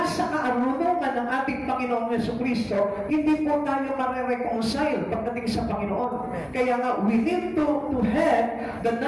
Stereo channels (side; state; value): both; identical; correlation 1.00